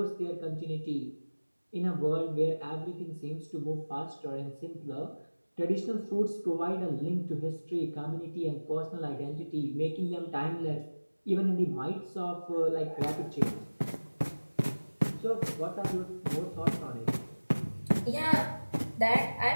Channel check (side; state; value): both; inverted; correlation -1.00